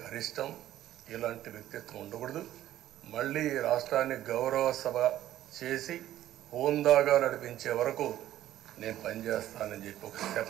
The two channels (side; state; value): left; quieter; 13.1 dB